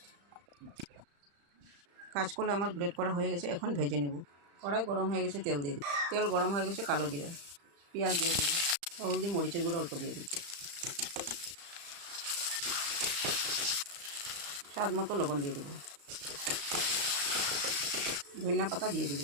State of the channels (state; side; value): late; left; 35 ms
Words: কাঁচকলা আমার গ্রেট করা হয়ে গেছে, এখন ভেজে নেব। কড়াই গরম হয়ে গেছে, তেল দিয়ে দিই। তেল গরম হয়ে গেছে, কালো জিরা, পেঁয়াজ দিয়ে দিই, হলদি মরিচের গুঁড়ো অল্প দিয়ে দিই, স্বাদ মতো লবণ দিয়ে দেবো, ধনিয়া পাতা দিয়ে